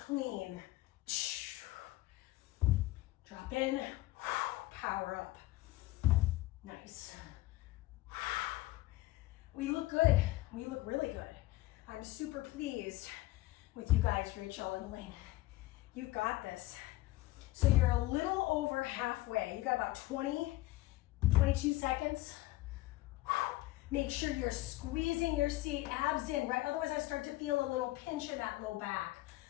Drop in, power up. Nice. We look good. We look really good. I'm super pleased with you guys, Rachel and Elaine. You've got this. So you're a little over halfway. You got about 20, 22 seconds. Make sure you're squeezing your seat, abs in, right? Otherwise I start to feel a little pinch in that low back.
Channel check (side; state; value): right; quieter; 18.1 dB